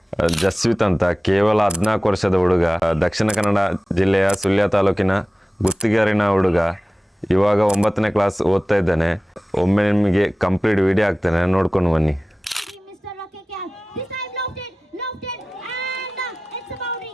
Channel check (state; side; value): normal; both; correlation 0.96